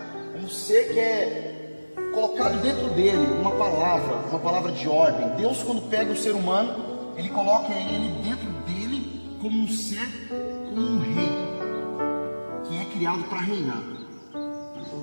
um ser que é colocado dentro dele uma palavra de ordem. Deus, quando pega o ser humano, Ele coloca ele dentro dele como um ser, como um rei, que é criado para reinar.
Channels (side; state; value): both; inverted; correlation -1.00